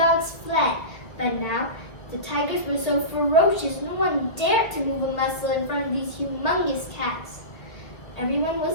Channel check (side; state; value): right; late; 1.6 ms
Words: fled, but now the tigers were so ferocious no one dared to move a muscle in front of these humongous cats. Everyone